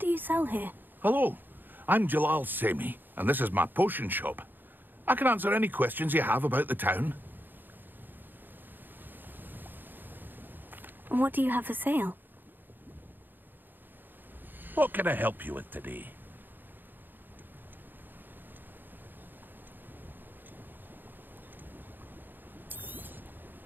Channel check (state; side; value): late; left; 0.092 ms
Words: you sell here? Hello, I'm Jalal Semi, and this is my potion shop. I can answer any questions you have about the town. What do you have for sale? What can I help you with today?